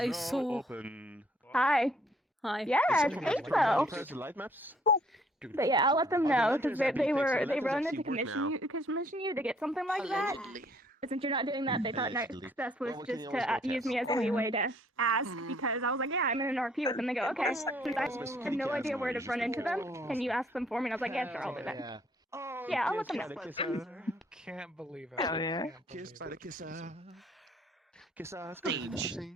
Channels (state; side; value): normal; both; correlation 0.62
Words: I now saw- open. Hi. Hi. Yeah, it's April. Press the light maps. But yeah, I'll let them know because they Letters wanted actually to work now. commission you to get something like that. But since you're not doing that, they thought next Allegedly. best was Well, we can just always to go use test. me as a leeway to ask because I was like, yeah, I'm in an RP with them. They go, okay. Since I had no idea where to run into them, can you ask them for me? And I was like, yeah, sure, I'll do that. Yeah. Oh, Yeah, I'll let them know. Can't believe it. Hell yeah. Kiss by the kisser. Kisser. Stage.